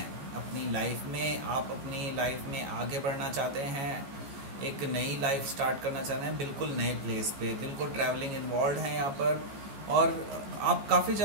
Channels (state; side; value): late; left; 14 ms